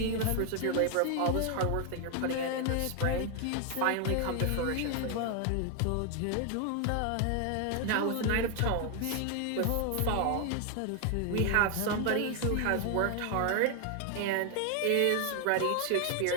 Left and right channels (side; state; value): both; different; correlation 0.00